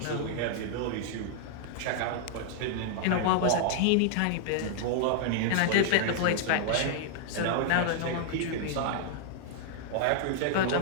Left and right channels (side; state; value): both; different; correlation -0.01